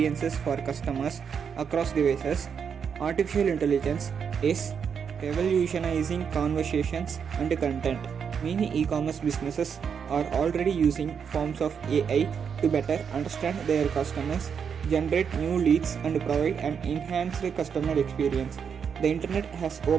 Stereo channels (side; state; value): left; quieter; 6.9 dB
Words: for customers across devices, artificial intelligence is revolutionizing conversations and content. Many e-commerce businesses are already using forms of AI to better understand their customers, generate new leads, and provide an enhanced customer experience. The internet has